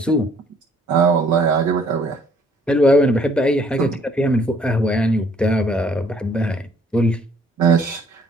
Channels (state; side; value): normal; both; correlation 0.61